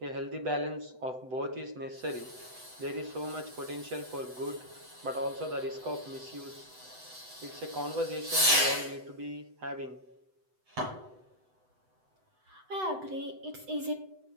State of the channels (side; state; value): left; late; 7.9 ms